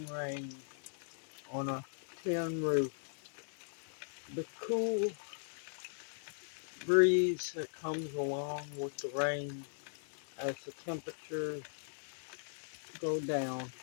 rain on a tin roof. The cool breeze that comes along with the rain as the temperatures go down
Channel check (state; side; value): silent; right; digital silence